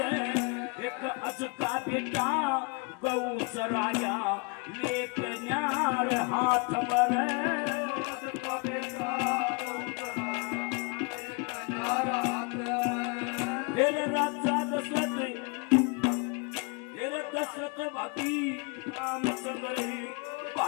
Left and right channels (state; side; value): quieter; right; 30.7 dB